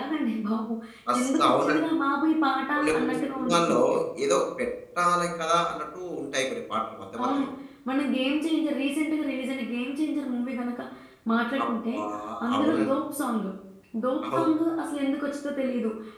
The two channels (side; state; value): both; identical; correlation 1.00